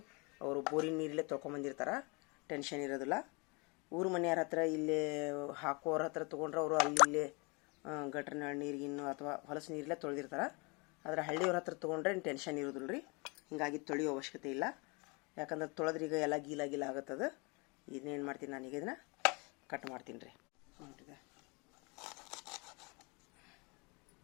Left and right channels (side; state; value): right; quieter; 29.8 dB